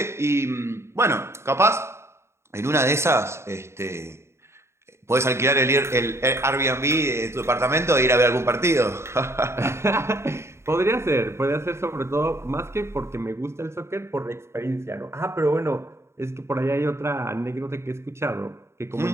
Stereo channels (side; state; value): left; late; 0.13 ms